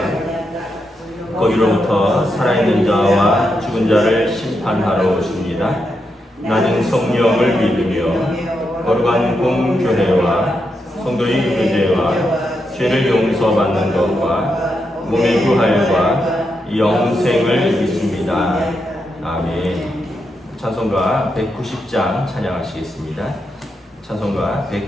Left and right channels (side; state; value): both; normal; correlation 0.84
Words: 거기로부터 살아있는 자와 죽은 자를 심판하러 오십니다. 나는 성령을 믿으며 거룩한 공교회와 성도의 교제와 죄를 용서받는 것과 몸의 부활과 영생을 믿습니다. 아멘. 찬송가 190장 찬양하시겠습니다. 찬송가